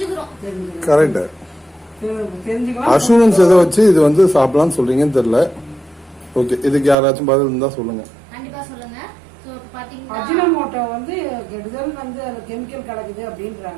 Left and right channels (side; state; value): left; drops out; at 7.0 s